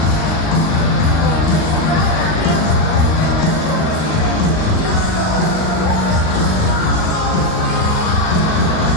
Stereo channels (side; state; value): right; late; 39 ms